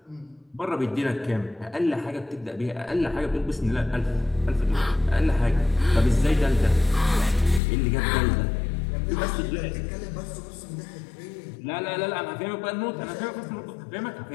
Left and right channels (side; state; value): right; drops out; at 7.6 s